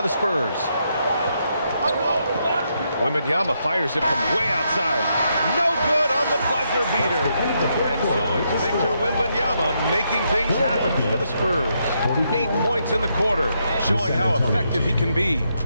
the Spurs. Wembanyama fires it from way outside. No good on the buzzer beater. And so it's Victor Wembanyama making things happen for the Spurs. 8 points in the quarter, showing how effective he can be.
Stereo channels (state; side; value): inverted; both; correlation -0.79